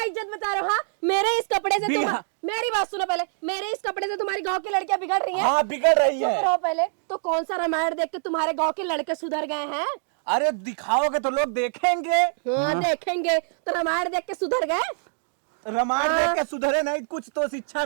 इज्जत बता रहे हो? हाँ, मेरे इस कपड़े से तुम, मेरी बात सुनो पहले, मेरे इस कपड़े से तुम्हारी गांव की लड़कियां बिगड़ रही हैं। हाँ, बिगड़ रही चुप है। रहो पहले। तो कौन सा रामायण देख के तुम्हारे गांव के लड़के सुधर गए हैं? अरे दिखाओगे तो लोग देखेंगे। हाँ देखेंगे, तो रामायण देख के सुधर गए? रामायण देख के सुधरे नहीं, कुछ तो शिक्षा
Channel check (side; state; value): left; silent; digital silence